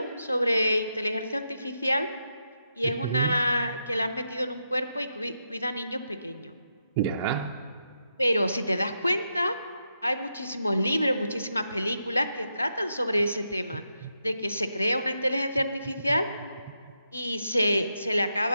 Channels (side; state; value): both; inverted; correlation -0.84